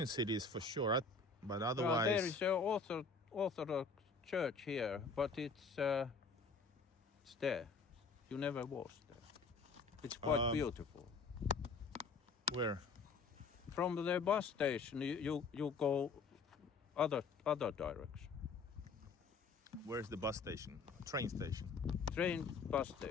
cities for sure, but otherwise... There is an Orthodox church here, but it's there. You never was there. It's quite beautiful. Where? From the bus station, you go other direction. Where's the bus station? Train station? Train bus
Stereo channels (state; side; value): quieter; right; 4.4 dB